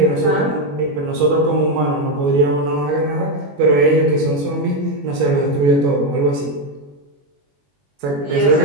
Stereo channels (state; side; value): late; left; 21 ms